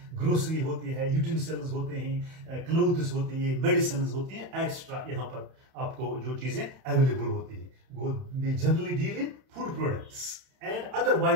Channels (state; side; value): late; left; 31 ms